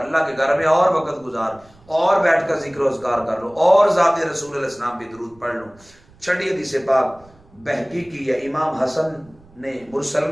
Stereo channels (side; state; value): right; noise; rumble, 27 dB below the sound